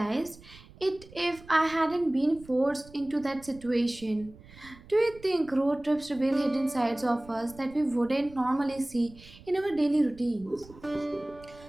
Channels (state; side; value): noise; right; rumble, 21 dB below the sound